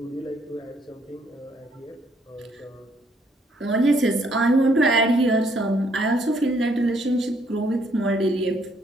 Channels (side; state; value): both; normal; correlation 0.68